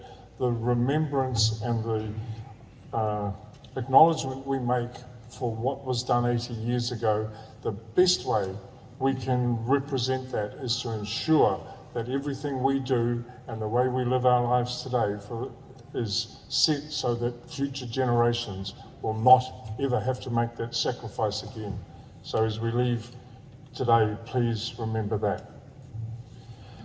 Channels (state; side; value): identical; both; correlation 1.00